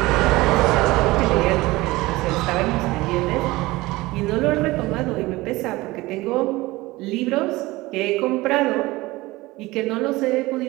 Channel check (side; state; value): left; quieter; 20.0 dB